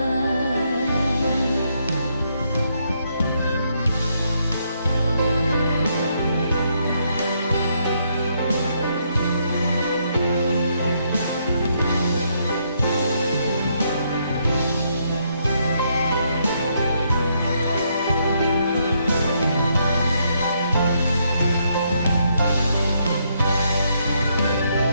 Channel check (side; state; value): both; inverted; correlation -0.75